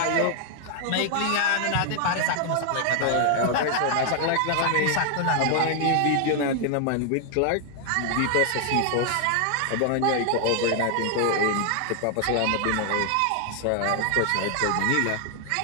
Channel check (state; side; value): different; both; correlation 0.00